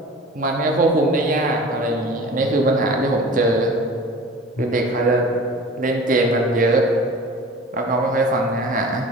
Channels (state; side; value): normal; both; correlation 0.40